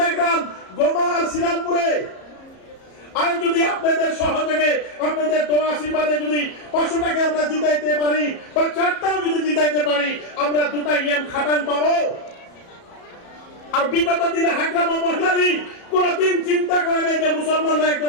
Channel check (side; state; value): right; late; 34 ms